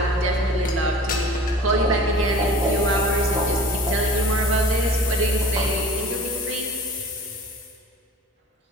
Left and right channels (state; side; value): normal; both; correlation 0.43